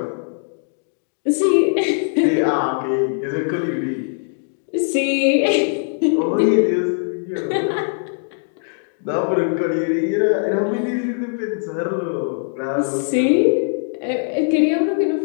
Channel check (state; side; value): silent; right; digital silence